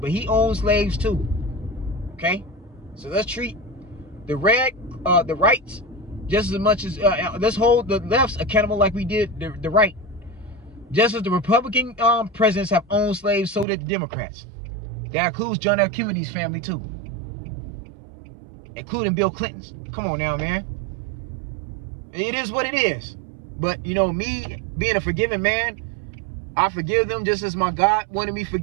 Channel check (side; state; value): left; drops out; at 13.7 s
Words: But he owned slaves too. Okay? So let's treat the rights just as much as, let's hold the lefts accountable like we did the right. Just as the Republican presidents have owned slaves, so did the Democrats. That includes John F. Kennedy's family too. Including Bill Clinton's. Come on now, man. It is what it is. But, you know, me being a forgiving man, I forgive them just as my God wanted me